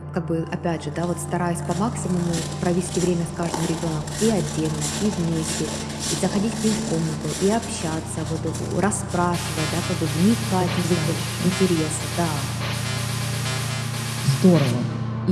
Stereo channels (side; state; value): both; identical; correlation 1.00